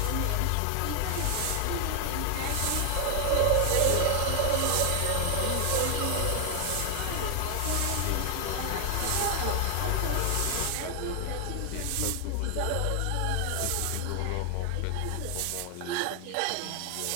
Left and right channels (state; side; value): different; both; correlation 0.00